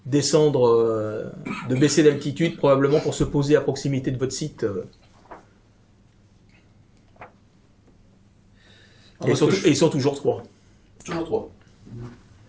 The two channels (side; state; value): both; identical; correlation 1.00